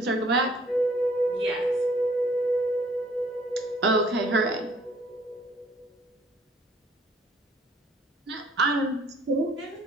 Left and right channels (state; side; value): normal; both; correlation 0.59